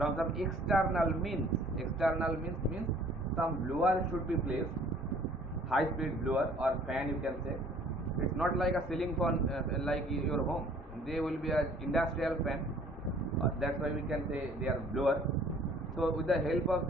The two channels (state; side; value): normal; both; correlation 0.55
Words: some external means. External means some blower should be placed, high speed blower or fan, you can say. It's not like a ceiling fan like your home. They will be an industrial fan. That's why we can say they are blower. So with the help of